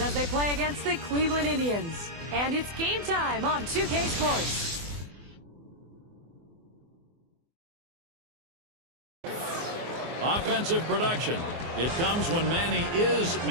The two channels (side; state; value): left; late; 24 ms